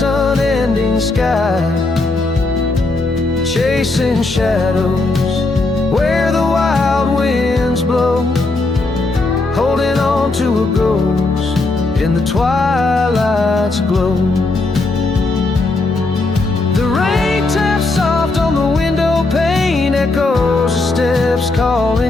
unending sky, chasing shadows where the wild winds blow, holding on to a ghost in the twilight's glow. The rain taps soft on the window pane, echoes of steps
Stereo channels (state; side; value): quieter; right; 3.3 dB